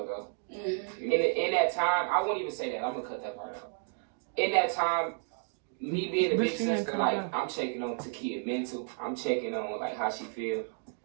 ago. In that time, I won't even say that. I'm gonna cut that part out. In that time, me being a big sister, like, I'm checking on Takia mental. I'm checking on, like, how she feel.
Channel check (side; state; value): left; silent; 57 dB below the other